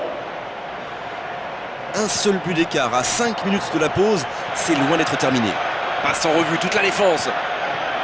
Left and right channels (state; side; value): identical; both; correlation 1.00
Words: Un seul but d'écart à 5 minutes de la pause, c'est loin d'être terminé. Passe en revue toute la défense.